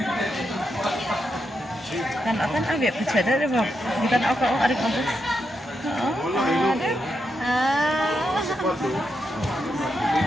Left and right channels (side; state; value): both; normal; correlation 0.84